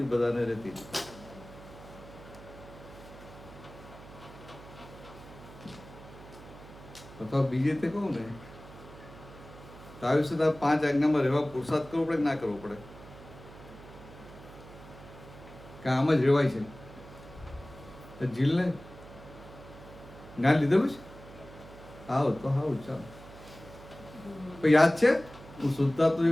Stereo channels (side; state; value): right; noise; hum, 18 dB below the sound